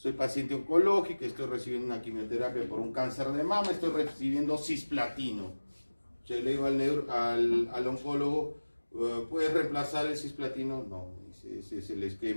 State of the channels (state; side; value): inverted; both; correlation -1.00